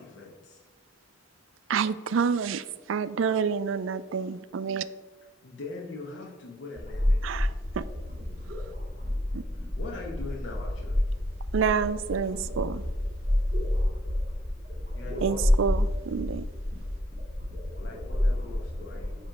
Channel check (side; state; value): both; normal; correlation 0.60